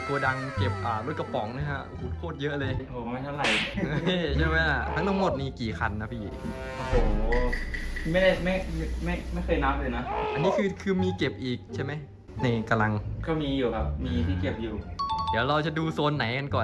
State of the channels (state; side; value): identical; both; correlation 1.00